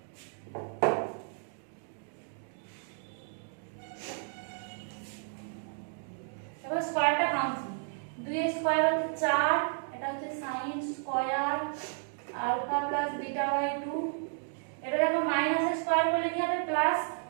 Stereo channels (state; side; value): silent; left; 56 dB below the other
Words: এবার স্কয়ারটা ভাঙছি। 2 এর স্কয়ার হচ্ছে 4, এটা হচ্ছে sin square alpha plus beta by 2। এটা দেখো মাইনাস এর স্কয়ার করলে কি হবে? প্লাস।